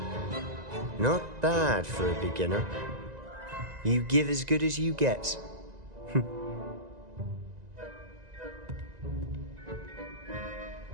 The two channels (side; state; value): left; late; 1.9 ms